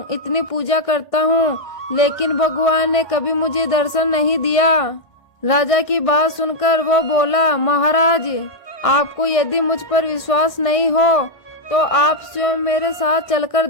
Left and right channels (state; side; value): late; right; 1.6 ms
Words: इतनी पूजा करता हूँ, लेकिन भगवान ने कभी मुझे दर्शन नहीं दिया। राजा की बात सुनकर वो बोला, महाराज, आपको यदि मुझ पर विश्वास नहीं हो तो आप स्वयं मेरे साथ चलकर